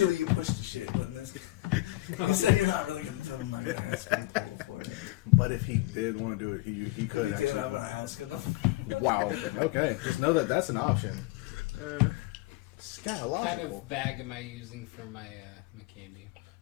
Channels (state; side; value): quieter; right; 19.4 dB